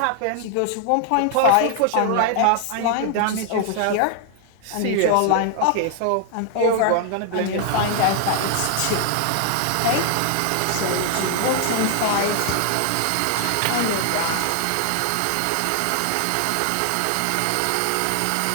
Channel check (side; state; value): both; different; correlation 0.00